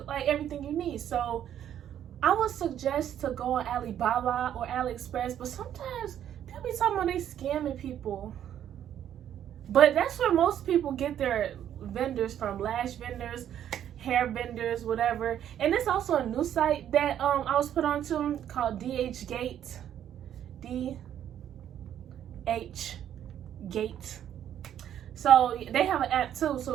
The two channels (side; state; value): left; quieter; 10.3 dB